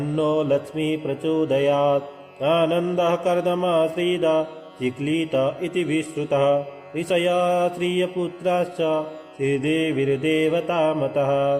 लक्ष्मी प्रचोदयात् आनन्दः कर्दमाश्रीदा चिक्लीत इति विश्रुतः ऋषया श्रियपुत्राश्च श्रीदेवीर्देवतामतः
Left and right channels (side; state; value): both; identical; correlation 1.00